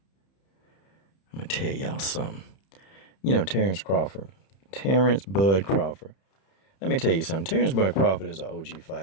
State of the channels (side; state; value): right; late; 31 ms